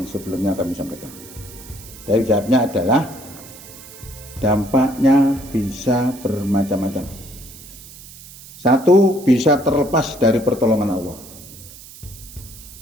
sebelumnya kami sampaikan. Dari jawabnya adalah dampaknya bisa bermacam-macam. Satu, bisa terlepas dari pertolongan Allah.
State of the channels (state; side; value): noise; right; hiss, 18 dB below the sound